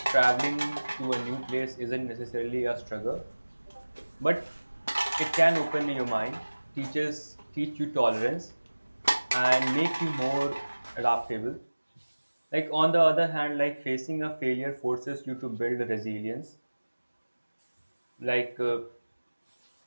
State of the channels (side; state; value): both; inverted; correlation -1.00